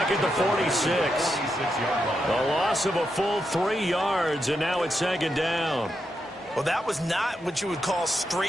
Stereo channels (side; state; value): both; normal; correlation 0.84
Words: at the 46. A loss of a full 3 yards, and now it's 2nd down. Well, that was not what you would call